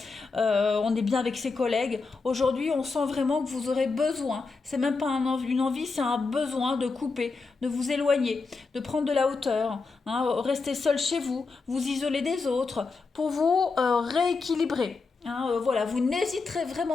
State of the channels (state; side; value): quieter; right; 4.3 dB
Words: on est bien avec ses collègues. Aujourd'hui, on sent vraiment que vous aurez besoin, c'est même pas une envie, c'est un besoin de couper, de vous éloigner, de prendre de la hauteur, hein, rester seul chez vous, vous isoler des autres, pour vous rééquilibrer. Hein, voilà, vous n'hésiterez